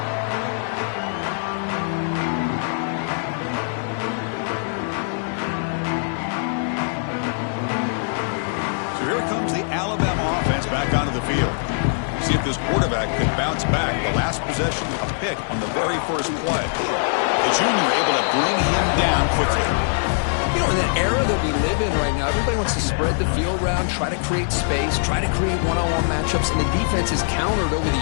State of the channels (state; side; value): silent; right; 64 dB below the other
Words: Back onto the field. See if this quarterback could bounce back. The last possession, a pick on the very first play. The junior able to bring him down quickly. You know, in that era that we live in right now, everybody wants to spread the field around, try to create space, try to create one-on-one matchups, and the defense is countered over the